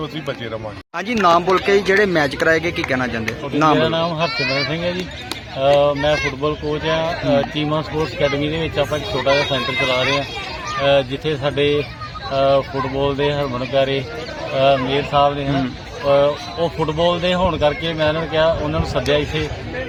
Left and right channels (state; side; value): identical; both; correlation 1.00